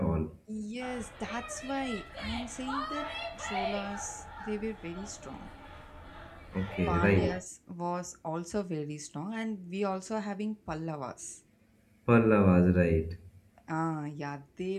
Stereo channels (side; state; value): both; identical; correlation 1.00